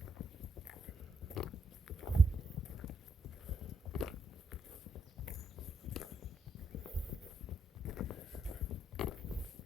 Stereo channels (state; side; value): normal; both; correlation 0.78